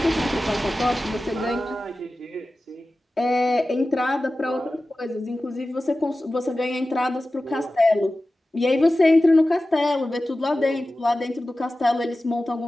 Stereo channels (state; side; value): normal; both; correlation 0.95